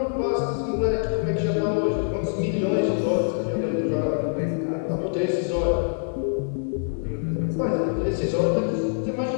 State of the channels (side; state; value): right; silent; digital silence